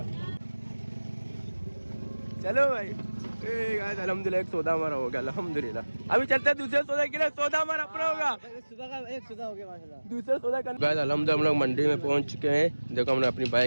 चलो भाई अल्हम्दुलिल्लाह एक सौदा हमारा हो गया अल्हम्दुलिल्लाह। अभी चलते हैं दूसरे सौदा के लिए, सौदा हमारा अपना होगा। सुबह का एक सौदा हो गया माशाल्लाह, दूसरा सौदा कर गाइस अल्हम्दुलिल्लाह। हम लोग मंडी में पहुंच चुके हैं। देखो हमने अपनी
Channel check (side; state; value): both; inverted; correlation -1.00